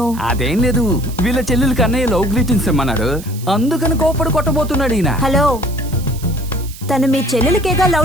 అదేం లేదు, వీళ్ళ చెల్లెలకి అన్నయ్య లవ్ గ్రీటింగ్స్ ఇమ్మన్నాడు, అందుకని కోపడి కొట్టబోతున్నాడు ఈయన. హలో, తను మీ చెల్లెలకేగా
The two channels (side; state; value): right; noise; hiss, 17 dB below the sound